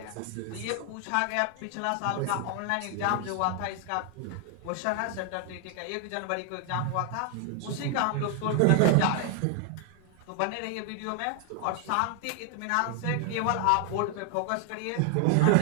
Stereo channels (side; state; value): both; different; correlation 0.00